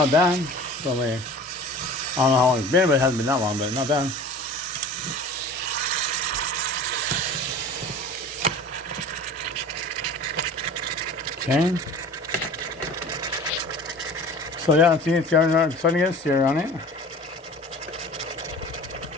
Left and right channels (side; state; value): both; normal; correlation 0.41